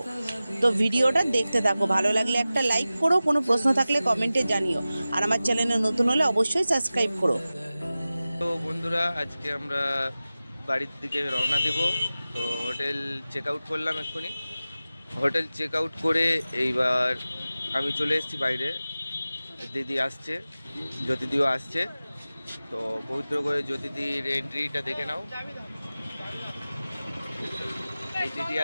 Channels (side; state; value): both; inverted; correlation -0.96